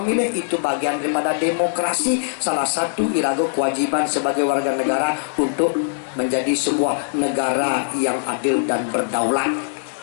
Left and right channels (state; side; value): silent; right; digital silence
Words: itu bagian daripada demokrasi salah satu irago kewajiban sebagai warga negara untuk menjadi sebuah negara yang adil dan berdaulat.